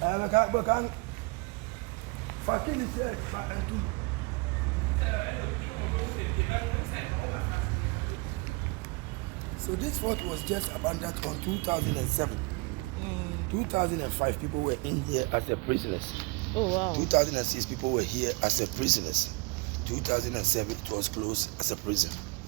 So this fort was just abandoned on 2007. 2005 people were in here as a prisoners. Oh wow. 2006 people were here as a prisoners. 2007 it was closed as a prison.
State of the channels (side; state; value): left; quieter; 28.0 dB